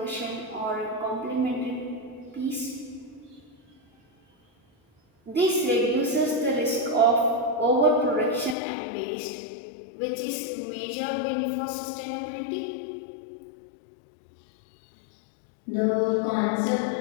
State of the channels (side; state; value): right; drops out; at 8.6 s